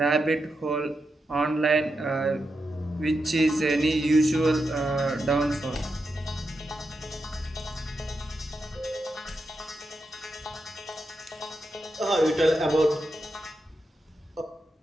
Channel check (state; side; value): normal; both; correlation 0.86